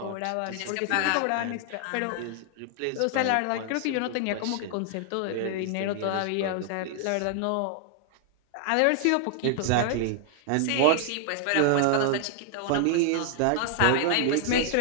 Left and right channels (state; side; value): different; both; correlation 0.00